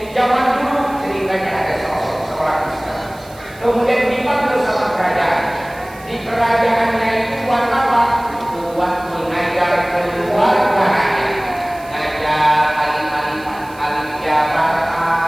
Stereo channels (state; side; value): noise; right; hiss, 23 dB below the sound